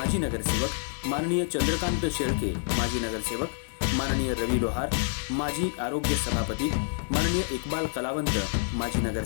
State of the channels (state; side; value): silent; right; digital silence